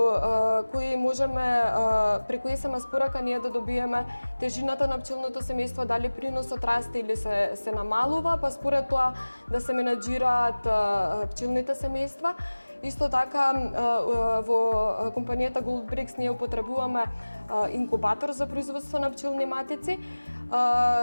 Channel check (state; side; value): inverted; both; correlation -1.00